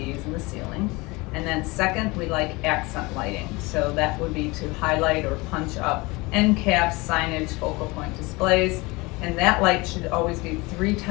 in the ceiling. And then second, we like accent lighting. So that would be to highlight or punch up end caps, signage, focal point displays. And that light should always be 3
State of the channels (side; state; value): right; quieter; 24.1 dB